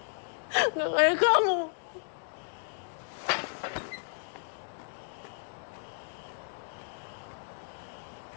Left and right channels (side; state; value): right; silent; digital silence